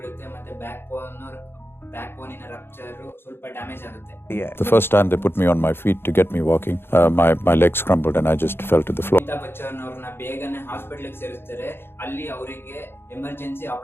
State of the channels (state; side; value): late; right; 0.11 ms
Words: ಮತ್ತೆ ಬ್ಯಾಕ್ ಬೋನಿನ ರಪ್ಚರ್ ಸ್ವಲ್ಪ ಡ್ಯಾಮೇಜ್ ಆಗುತ್ತೆ. The first time they put me on my feet to get me walking, my legs crumbled and I just fell to the floor. Amitabh Bachchan ಅವ್ರನ್ನ ಬೇಗನೆ ಹಾಸ್ಪಿಟಲ್ ಸೇರಿಸ್ತಾರೆ. ಅಲ್ಲಿ ಅವರಿಗೆ ಎಮರ್ಜೆನ್ಸಿ